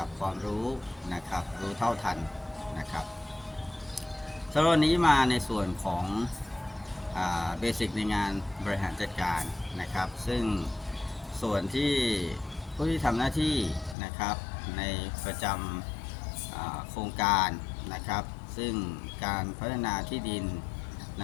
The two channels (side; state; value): right; drops out; at 14.0 s